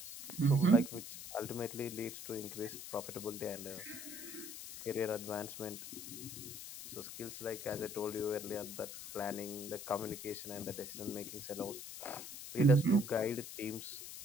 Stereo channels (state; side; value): noise; left; hiss, 10 dB below the sound